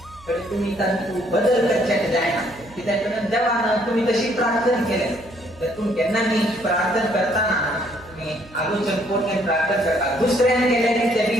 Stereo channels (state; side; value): noise; right; hum, 23 dB below the sound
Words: कडे तुम्ही तू बदल करण्यात जाय ना की त्याकडे देवानं तुम्ही तशी प्रार्थना केली त्यातून त्यांना मी प्रार्थना करताना तुम्ही आलोचन कोण प्रार्थना करता दुसऱ्याने केल्याने ते